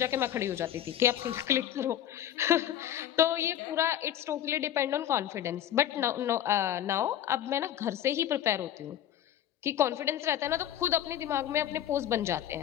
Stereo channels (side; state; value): right; quieter; 11.2 dB